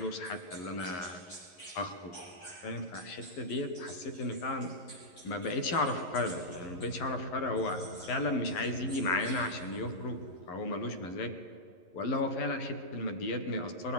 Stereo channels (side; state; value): right; late; 11 ms